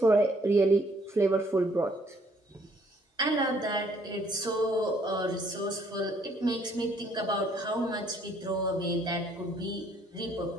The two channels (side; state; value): both; normal; correlation 0.64